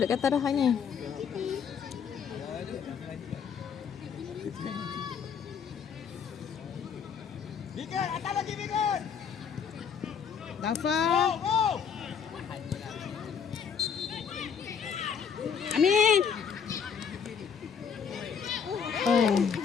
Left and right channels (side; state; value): right; quieter; 7.0 dB